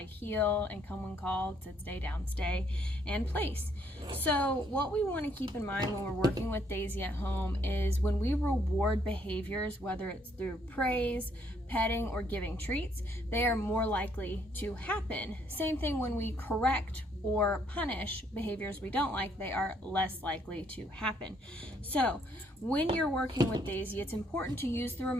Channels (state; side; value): normal; both; correlation 0.68